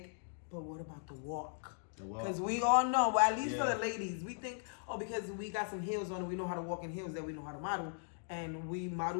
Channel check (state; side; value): silent; right; digital silence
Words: but what about the walk? Because we all know, well, at least for the ladies, we think, oh, because we got some heels on and we know how to walk in heels, that we know how to model. And we